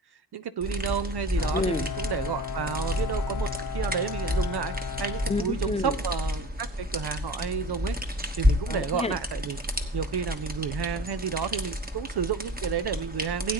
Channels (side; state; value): both; normal; correlation 0.39